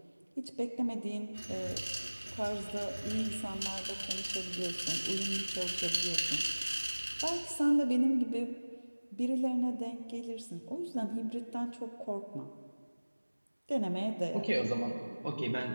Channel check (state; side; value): inverted; both; correlation -1.00